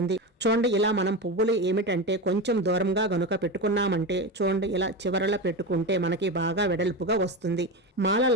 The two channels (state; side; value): normal; both; correlation 0.20